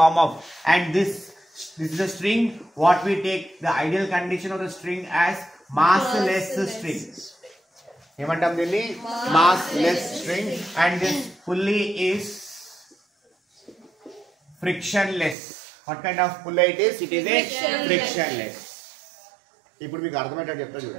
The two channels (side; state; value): left; drops out; at 15.4 s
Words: of, and this is a string. What we take the ideal condition of the string as massless string. ఏమంటాం దీన్ని? Massless string. And this pulley is frictionless. What kind of pulley it is? It is a frictionless. ఇప్పుడు మీకు అర్థమయ్యేటట్టు చెప్తా